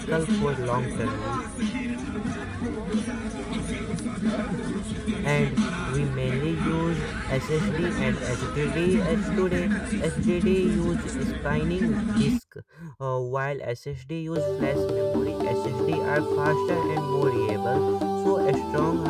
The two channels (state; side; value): identical; both; correlation 1.00